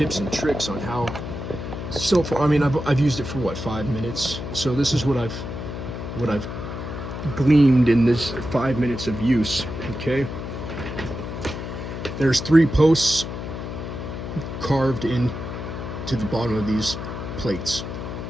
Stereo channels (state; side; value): noise; left; hum, 7 dB below the sound